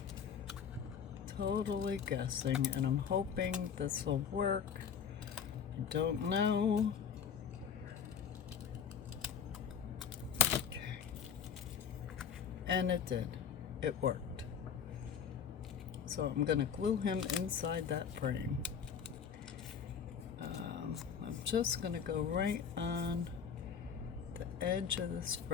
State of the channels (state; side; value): quieter; right; 7.4 dB